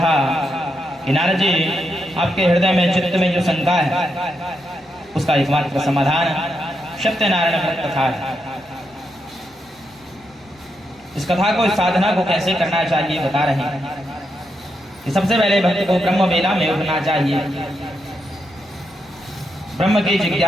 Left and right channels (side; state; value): both; normal; correlation 0.83